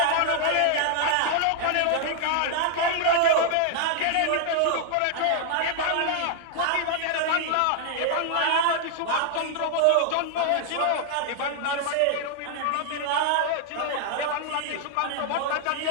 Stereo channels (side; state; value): both; different; correlation 0.00